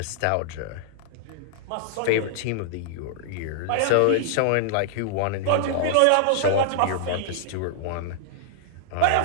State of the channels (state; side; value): different; both; correlation -0.01